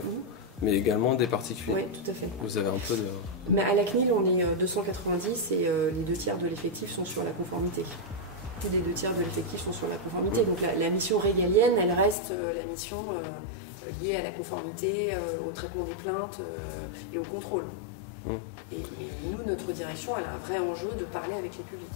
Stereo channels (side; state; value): right; drops out; at 12.2 s